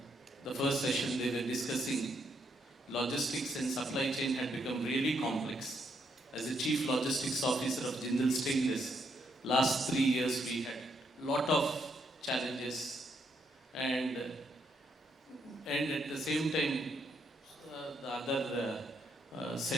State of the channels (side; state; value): both; normal; correlation 0.76